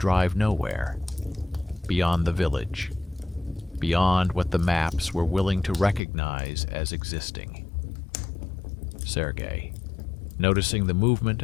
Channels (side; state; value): right; drops out; at 6.0 s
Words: nowhere, beyond the village, beyond what the maps were willing to recognize as existing. Sergei, noticing the movement